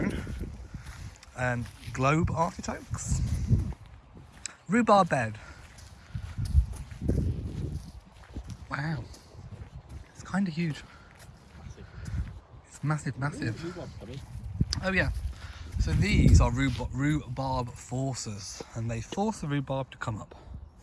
and globe artichokes, rhubarb bed. Wow. It's kind of huge. It's massive, massive. Oh yeah. So these are rhubarb forcers, and they force the rhubarb to come up.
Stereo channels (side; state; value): both; identical; correlation 1.00